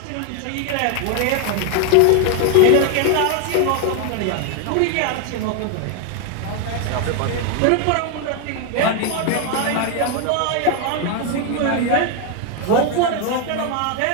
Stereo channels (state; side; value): different; both; correlation 0.01